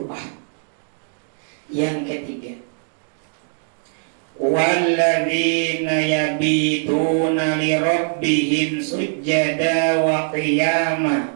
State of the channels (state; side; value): silent; left; 55 dB below the other